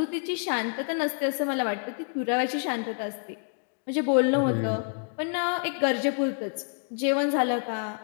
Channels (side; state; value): right; silent; 59 dB below the other